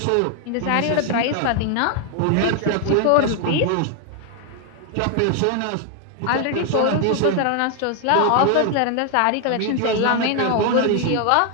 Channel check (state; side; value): different; both; correlation 0.00